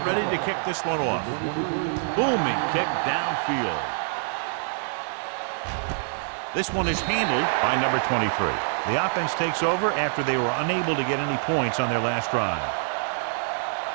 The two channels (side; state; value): left; silent; 61 dB below the other